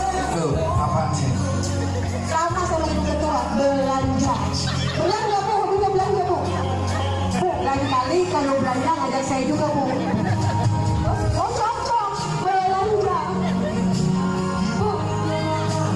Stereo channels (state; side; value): identical; both; correlation 1.00